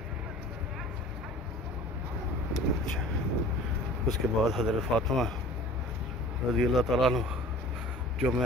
अच्छा। उसके बाद हज़रत फ़ातिमा रज़ी अल्लाह ताला अन्हु, जो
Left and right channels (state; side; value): normal; both; correlation 0.44